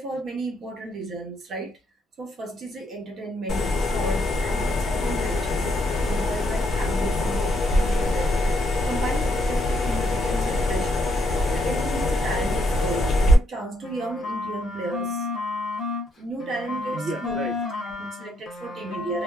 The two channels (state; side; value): normal; both; correlation 0.75